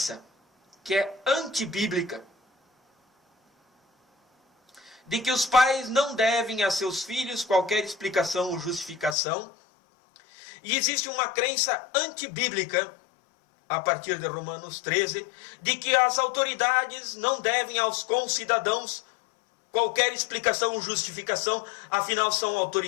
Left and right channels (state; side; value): drops out; right; at 9.2 s